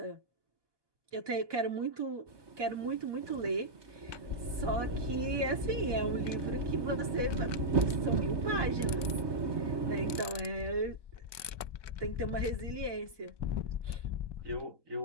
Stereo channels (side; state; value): left; late; 1.2 ms